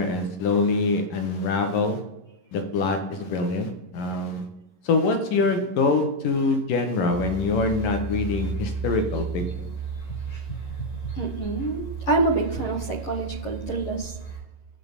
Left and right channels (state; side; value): late; right; 11 ms